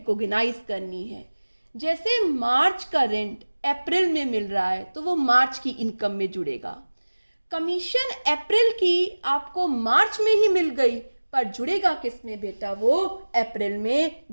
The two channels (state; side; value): inverted; both; correlation -1.00